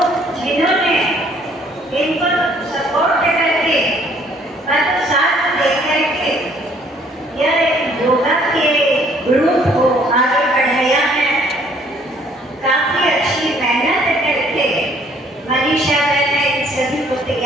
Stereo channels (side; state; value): both; normal; correlation 0.61